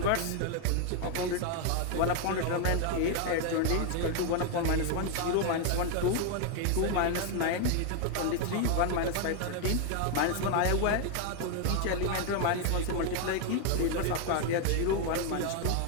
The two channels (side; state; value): both; different; correlation 0.01